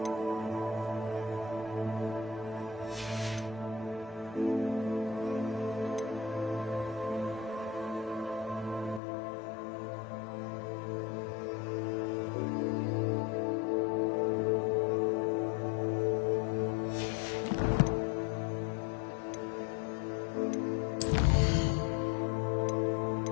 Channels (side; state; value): right; drops out; at 9.0 s